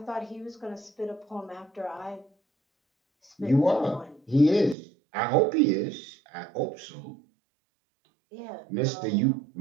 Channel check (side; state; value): left; drops out; at 4.8 s